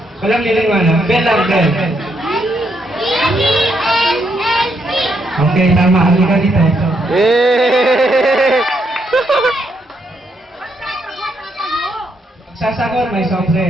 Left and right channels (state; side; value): normal; both; correlation 0.76